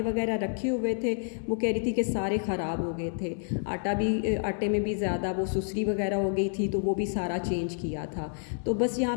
वगैरह रखे हुए थे वो कह रही थी कि सारे ख़राब हो गए थे। आटे में भी ज़्यादा वो सुसरी वगैरह हो गई थी, तो वो भी सारा चेंज किया था। तो बस यहाँ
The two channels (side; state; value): right; silent; 59 dB below the other